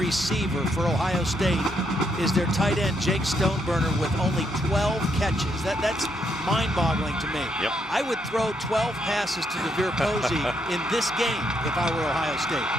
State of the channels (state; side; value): normal; both; correlation 0.76